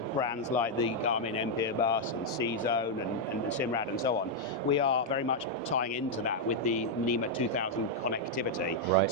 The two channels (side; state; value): both; normal; correlation -0.02